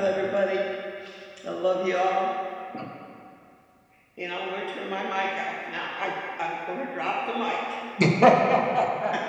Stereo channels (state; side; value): identical; both; correlation 1.00